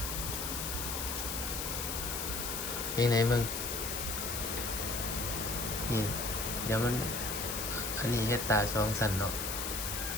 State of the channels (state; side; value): noise; left; hiss, 3 dB below the sound